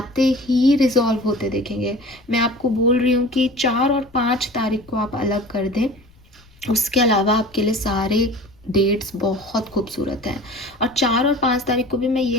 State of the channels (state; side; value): noise; left; rumble, 28 dB below the sound